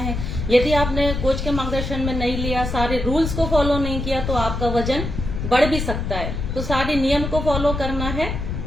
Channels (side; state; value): left; noise; rumble, 4 dB below the sound